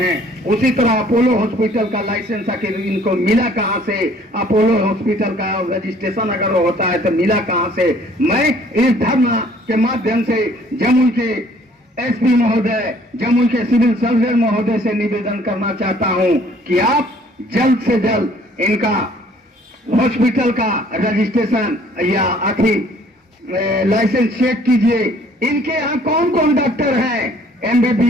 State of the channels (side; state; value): both; normal; correlation 0.58